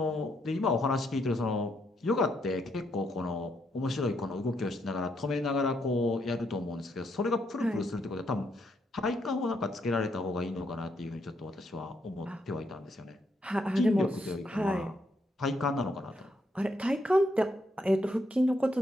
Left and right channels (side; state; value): both; normal; correlation 0.76